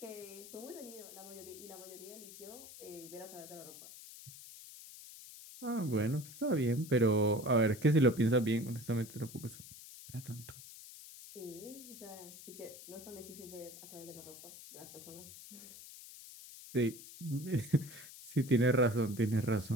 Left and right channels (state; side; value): noise; left; hiss, 15 dB below the sound